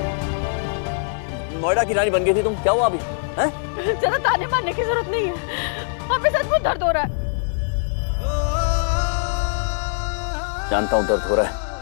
नोएडा की रानी बन गई थी तुम। क्या हुआ अभी? हैं? ज्यादा ताने मारने की जरूरत नहीं है, हमें सचमुच दर्द हो रहा है। जानता हूं दर्द हो रहा है,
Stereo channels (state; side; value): silent; right; 64 dB below the other